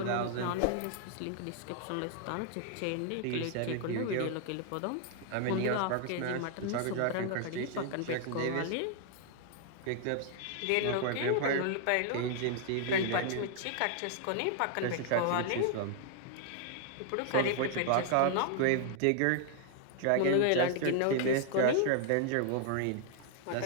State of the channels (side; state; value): both; different; correlation 0.00